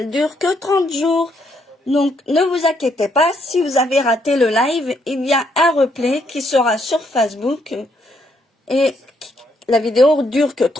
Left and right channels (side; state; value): both; normal; correlation 0.73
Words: dure que 30 jours. Donc, ne vous inquiétez pas, si vous avez raté le live, il y a un replay qui sera sur Facebook. Et la vidéo dure que